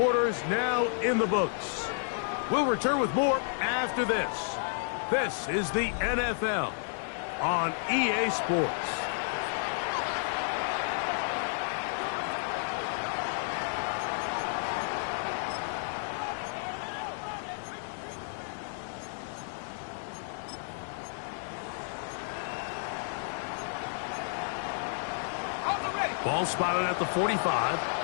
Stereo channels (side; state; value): right; silent; 57 dB below the other